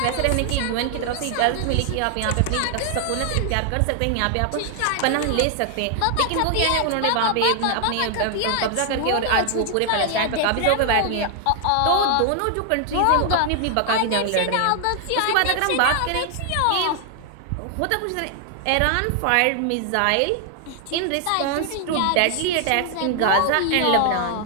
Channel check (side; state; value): both; different; correlation 0.00